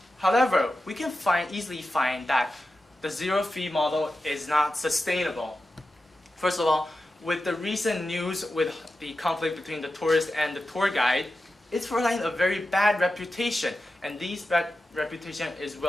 However, we can easily find that the zero-fee model is not sustainable. First of all, with the recent news with the conflict between the tourist and the tour guide, it's providing a very bad reputation, and this bad reputation is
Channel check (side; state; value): both; normal; correlation 0.92